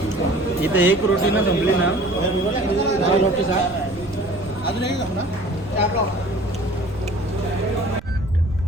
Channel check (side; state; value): right; noise; rumble, 17 dB below the sound